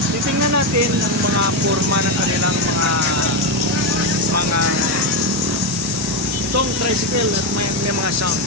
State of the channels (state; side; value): normal; both; correlation 0.10